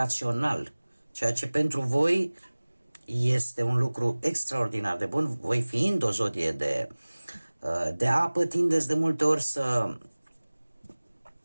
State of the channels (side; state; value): both; inverted; correlation -1.00